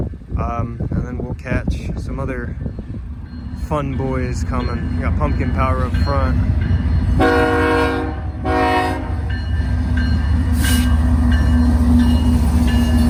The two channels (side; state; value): both; identical; correlation 1.00